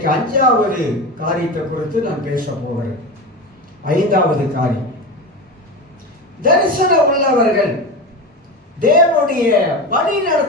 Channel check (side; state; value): both; normal; correlation 0.24